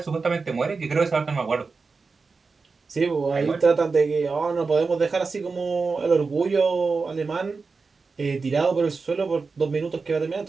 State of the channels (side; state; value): left; quieter; 4.5 dB